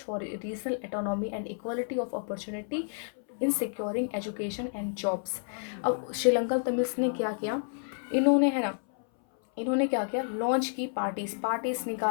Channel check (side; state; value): right; silent; 58 dB below the other